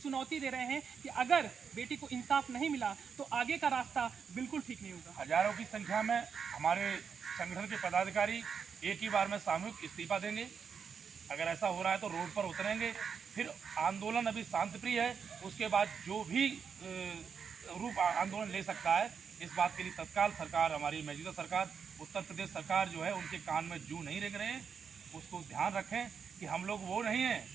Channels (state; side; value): quieter; left; 6.5 dB